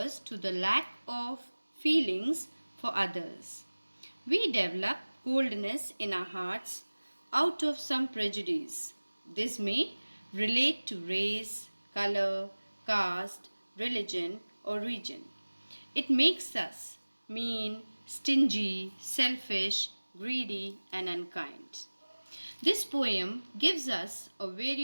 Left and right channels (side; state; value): both; inverted; correlation -1.00